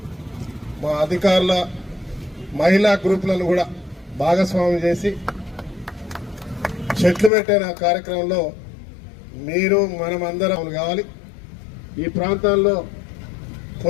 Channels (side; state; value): right; drops out; at 7.3 s